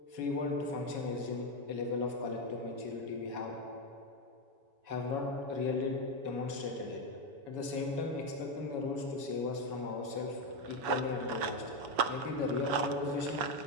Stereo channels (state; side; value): late; left; 7.1 ms